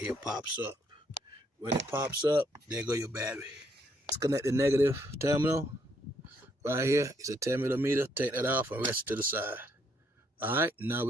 pops up. When it pops up, there go your battery. Disconnect the negative terminal. Right here, it's a 10 millimeter. Take that off and rest it to the side. All right, now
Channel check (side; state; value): both; normal; correlation 0.71